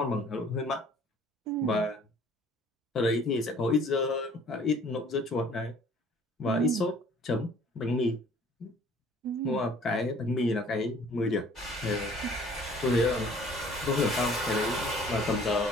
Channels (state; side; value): normal; both; correlation 0.54